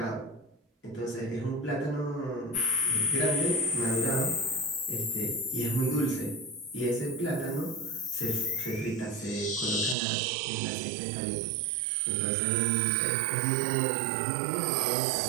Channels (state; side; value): drops out; left; at 10.0 s